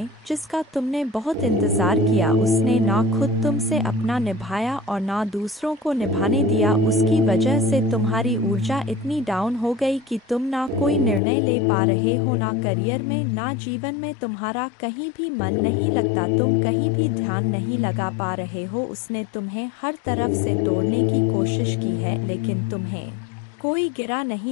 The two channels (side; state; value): right; drops out; at 11.2 s